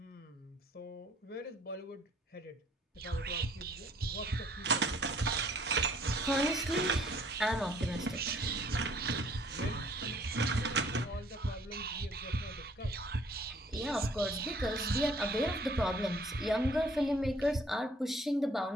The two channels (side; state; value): both; normal; correlation 0.59